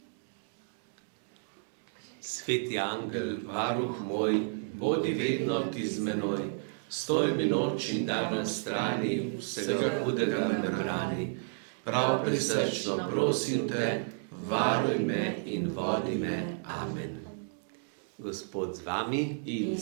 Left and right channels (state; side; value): silent; left; digital silence